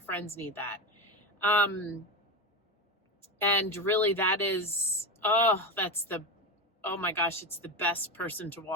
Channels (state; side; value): normal; both; correlation 0.18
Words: need that. And really that is, oh my gosh, it's the best person to